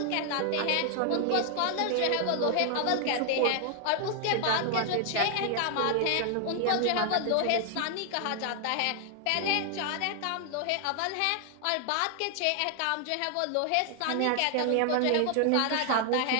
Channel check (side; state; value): both; different; correlation 0.00